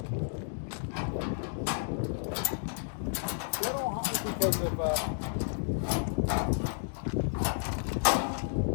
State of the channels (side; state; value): right; silent; digital silence